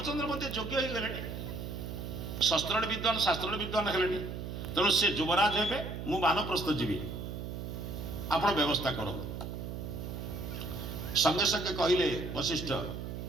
मध्य योग्य हो गले शस्त्र विद्वान शास्त्र विद्वान है तेणु से युवराज हे मु बानप्रस्थ जीवी आपण व्यवस्था करूँ संगे संगे कहले वशिष्ठ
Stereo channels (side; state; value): right; noise; hum, 6 dB below the sound